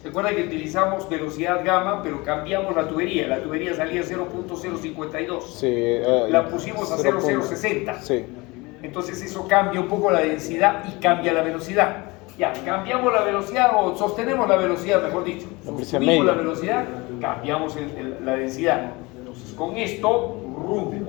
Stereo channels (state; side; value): quieter; right; 24.1 dB